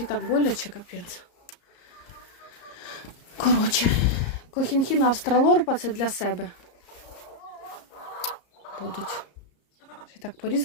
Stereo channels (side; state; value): right; late; 34 ms